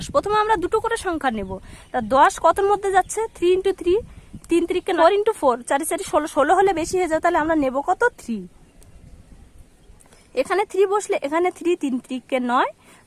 প্রথমে আমরা দুটো করে সংখ্যা নেব। তা 10 কতর মধ্যে যাচ্ছে? 3 × 3 3 × 3 = 9 × 4 4 × 4 = 16 16 হলে বেশি হয়ে যায়, তাহলে আমরা নেব কত? 3। এখানে 3 বসলে এখানে 3 3 × 3 = 9।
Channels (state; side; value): identical; both; correlation 1.00